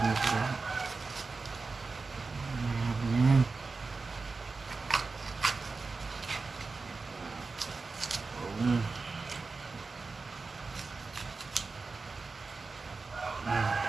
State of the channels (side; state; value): left; quieter; 4.1 dB